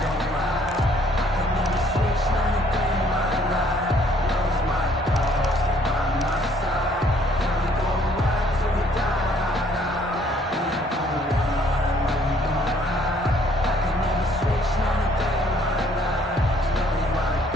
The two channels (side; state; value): both; normal; correlation 0.63